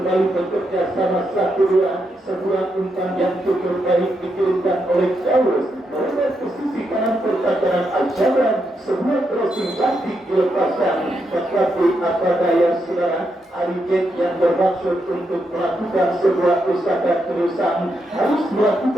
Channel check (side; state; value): both; normal; correlation 0.82